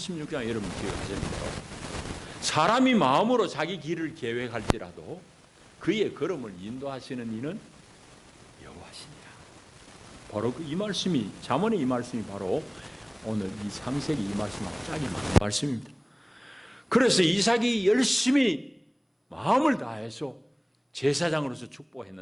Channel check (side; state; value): both; identical; correlation 1.00